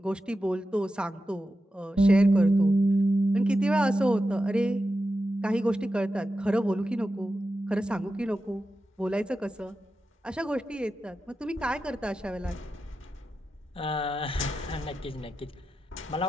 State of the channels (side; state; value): both; normal; correlation 0.90